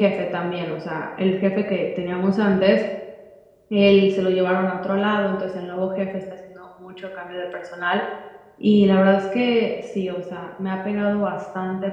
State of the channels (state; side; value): identical; both; correlation 1.00